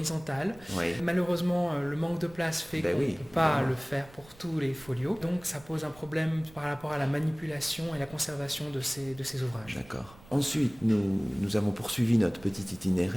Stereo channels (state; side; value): noise; right; rumble, 22 dB below the sound